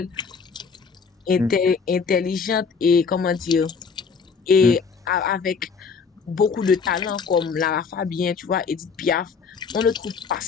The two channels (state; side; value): quieter; right; 5.5 dB